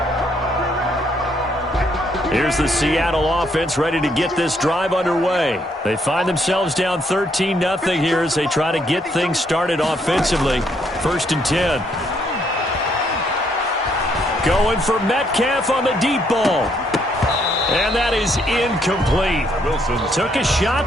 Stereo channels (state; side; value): normal; both; correlation 0.71